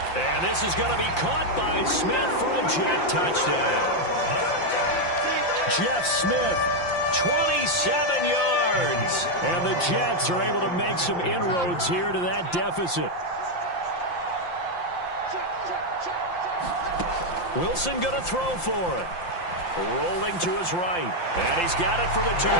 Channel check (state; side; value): late; right; 5.8 ms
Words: And this is going to be caught by Smith for a Jet touchdown. Jeff Smith, 27 yards. And the Jets are able to make some inroads here to that deficit. Wilson going to throw for it. Rolling to his right. And he's got it for the